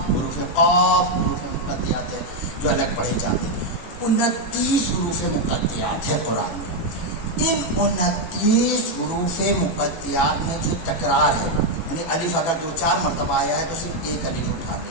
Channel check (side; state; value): right; late; 18 ms